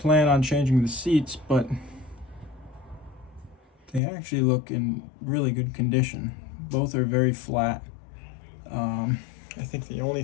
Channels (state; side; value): drops out; right; at 4.0 s